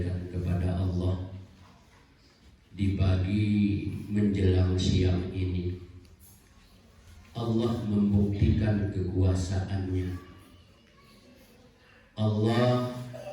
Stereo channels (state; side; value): identical; both; correlation 1.00